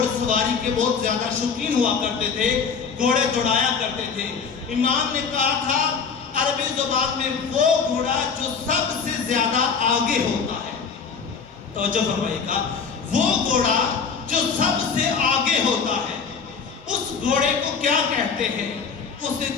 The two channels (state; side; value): quieter; right; 5.8 dB